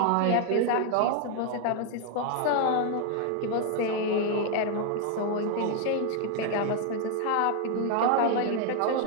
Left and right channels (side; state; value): both; different; correlation 0.01